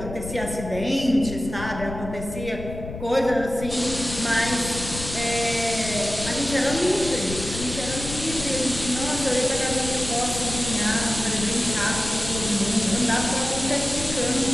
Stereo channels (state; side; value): noise; left; rumble, 9 dB below the sound